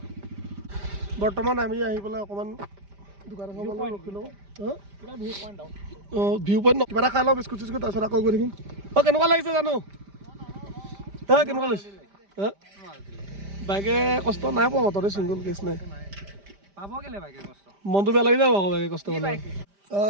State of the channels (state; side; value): late; left; 5.0 ms